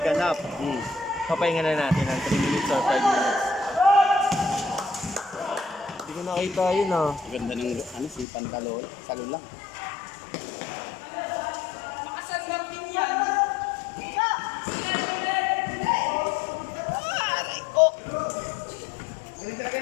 half. Papahinga na natin ng 3 minutes or 5 minutes. Hindi ko nakita yun ah. Ganda ng ano, si Pantalon. Salo lang.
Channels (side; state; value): right; drops out; at 8.2 s